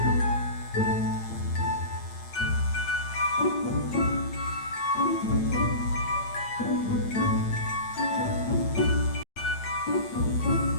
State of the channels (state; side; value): late; right; 8.8 ms